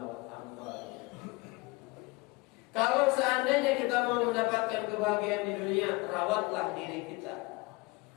amwal. Kalau seandainya kita mau mendapatkan kebahagiaan di dunia, rawatlah diri kita.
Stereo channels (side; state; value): right; quieter; 24.3 dB